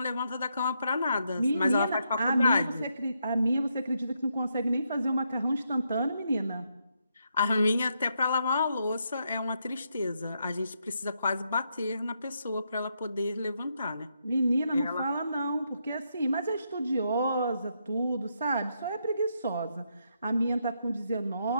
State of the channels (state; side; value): inverted; both; correlation -0.79